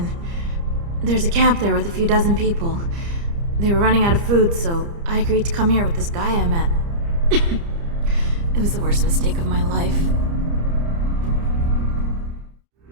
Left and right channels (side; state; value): left; late; 30 ms